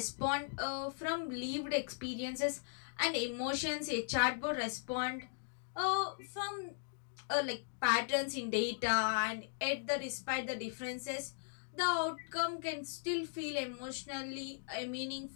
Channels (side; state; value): right; silent; digital silence